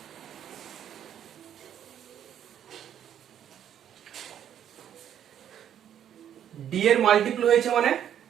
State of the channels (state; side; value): quieter; left; 9.8 dB